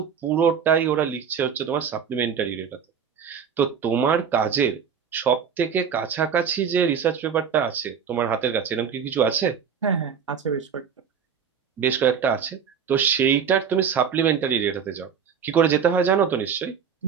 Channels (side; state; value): left; quieter; 7.1 dB